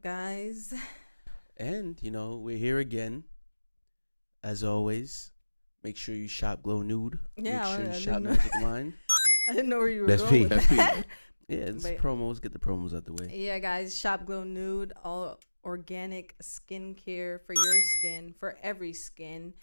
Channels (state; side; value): inverted; both; correlation -1.00